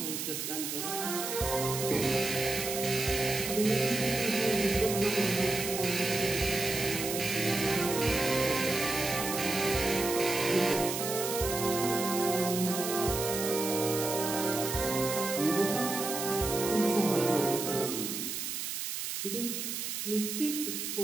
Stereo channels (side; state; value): right; noise; hiss, 4 dB below the sound